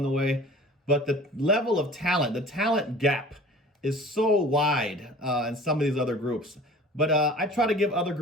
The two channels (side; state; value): both; normal; correlation 0.44